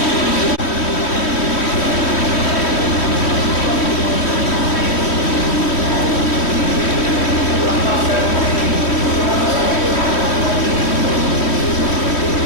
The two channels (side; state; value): right; late; 3.1 ms